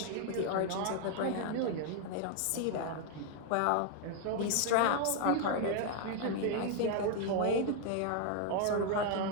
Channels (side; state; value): both; different; correlation 0.00